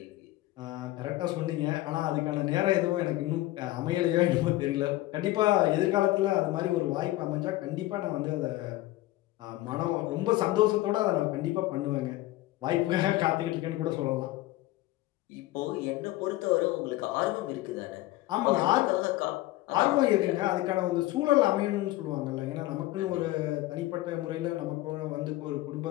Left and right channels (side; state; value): right; quieter; 17.2 dB